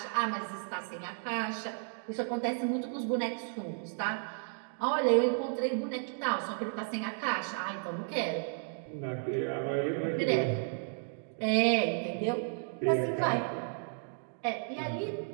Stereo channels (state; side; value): silent; left; 56 dB below the other